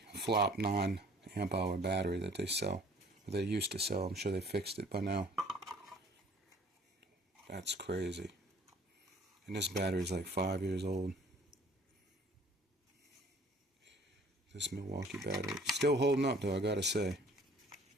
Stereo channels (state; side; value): normal; both; correlation 0.53